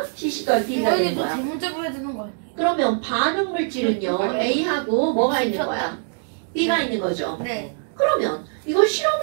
CC 더하기 DB가 되는 거야. 대문자로 해야 되는 거 아니에요? 그러면 반응 물질은요. A하고 뭐가 있는 거야? B가 있는 거죠. 네. 그러면 이걸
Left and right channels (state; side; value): silent; left; 64 dB below the other